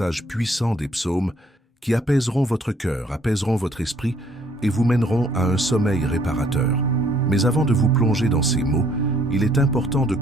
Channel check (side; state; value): both; normal; correlation 0.63